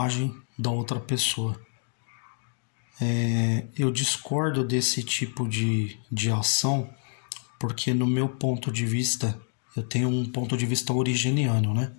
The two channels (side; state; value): right; silent; 60 dB below the other